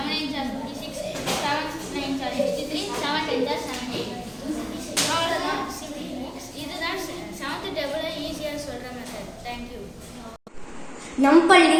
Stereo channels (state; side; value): identical; both; correlation 1.00